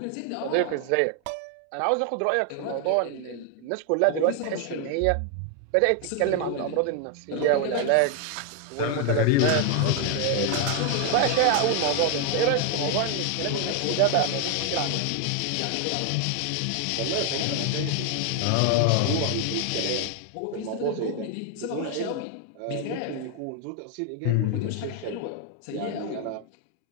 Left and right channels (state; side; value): different; both; correlation 0.00